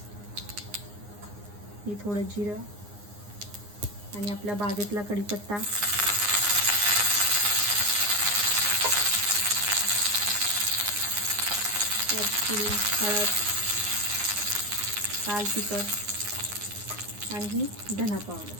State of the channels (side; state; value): left; late; 9.7 ms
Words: ही थोडं जिरं आणि आपल्या बागेतला कढीपत्ता, त्यात थोडी हळद, लाल तिखट आणि ही धना